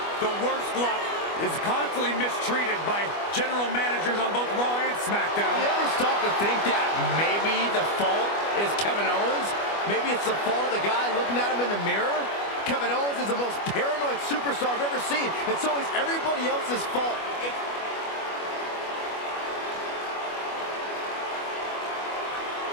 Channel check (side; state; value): right; late; 25 ms